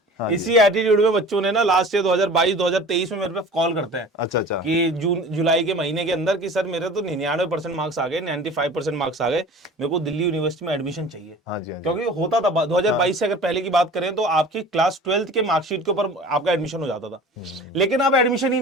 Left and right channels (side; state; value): both; normal; correlation 0.41